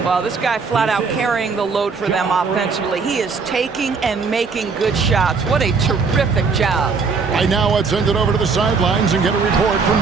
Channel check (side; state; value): left; quieter; 4.9 dB